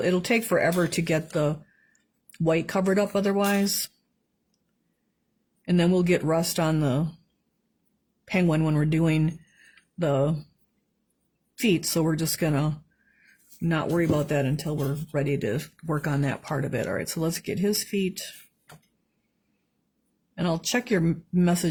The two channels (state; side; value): identical; both; correlation 1.00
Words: take forever to get the white covered up otherwise. And then we'll get rust on the penguin when we're doing the feet, so we're just gonna not worry about that until we're ready to work on that part of it. All right, so let's get his feet, and I'll check your